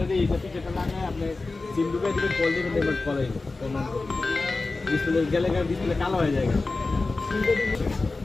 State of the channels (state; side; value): quieter; right; 3.6 dB